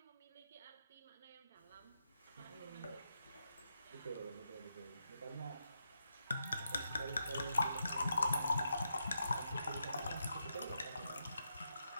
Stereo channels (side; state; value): both; inverted; correlation -0.83